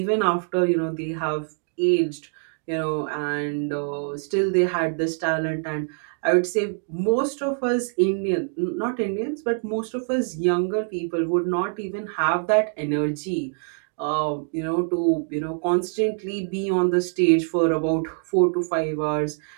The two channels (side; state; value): left; silent; 62 dB below the other